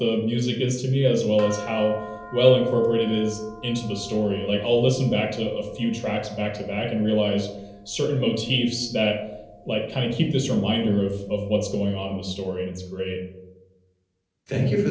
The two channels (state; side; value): identical; both; correlation 1.00